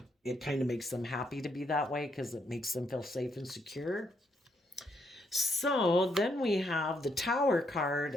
it kind of makes them happy to be that way because it makes them feel safe and secure. So then we have the Tower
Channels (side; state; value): both; normal; correlation 0.76